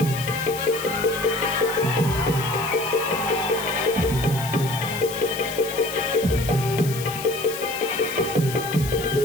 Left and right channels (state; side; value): noise; left; hiss, 11 dB below the sound